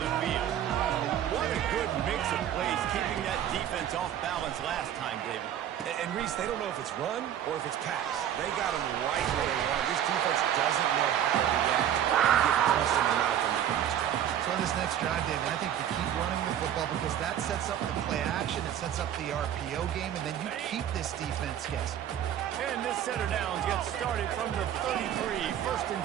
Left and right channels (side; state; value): left; quieter; 10.4 dB